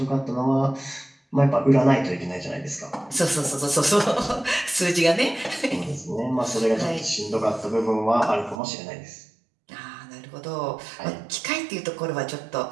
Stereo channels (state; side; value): drops out; left; at 8.6 s